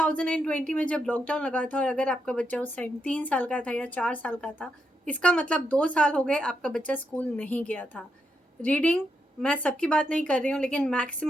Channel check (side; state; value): both; normal; correlation 0.82